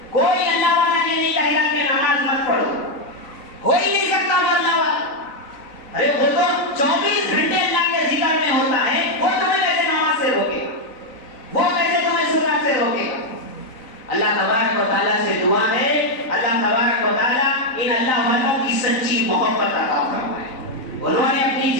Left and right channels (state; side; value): late; right; 3.9 ms